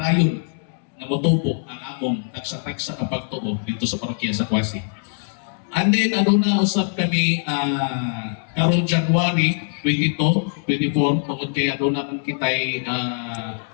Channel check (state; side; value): silent; right; 64 dB below the other